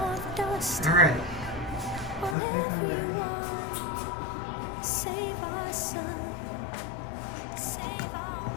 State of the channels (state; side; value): drops out; right; at 2.4 s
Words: dust. All right. On everyone. Save our sun, save our